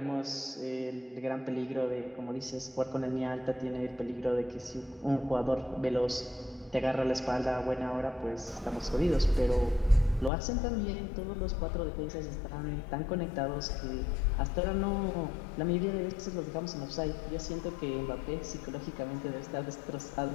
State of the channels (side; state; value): right; drops out; at 10.3 s